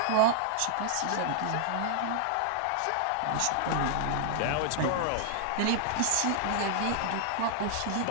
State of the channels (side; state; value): both; different; correlation -0.01